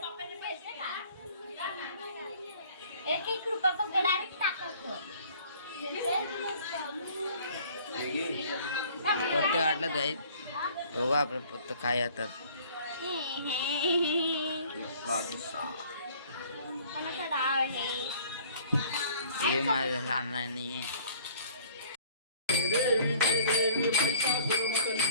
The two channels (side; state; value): both; inverted; correlation -0.53